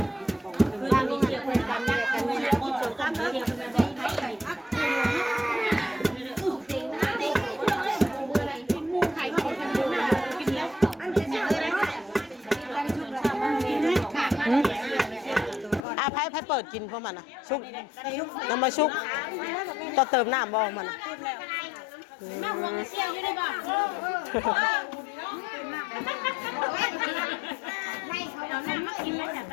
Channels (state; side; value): drops out; right; at 15.8 s